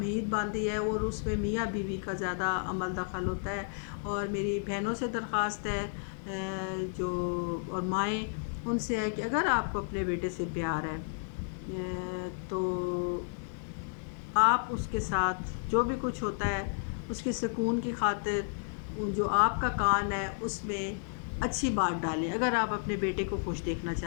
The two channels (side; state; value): right; silent; digital silence